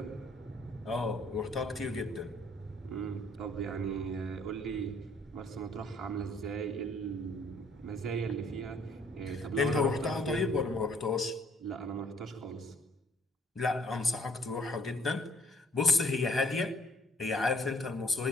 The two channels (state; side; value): normal; both; correlation 0.60